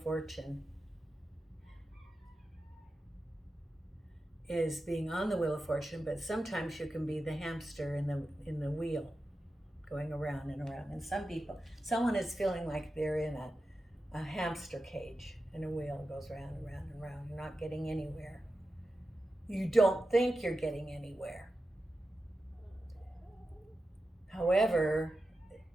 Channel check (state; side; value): normal; both; correlation 0.91